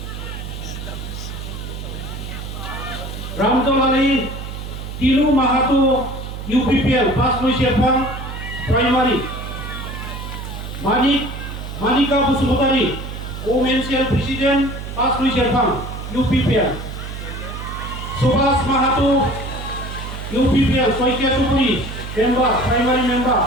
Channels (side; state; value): right; noise; hum, 8 dB below the sound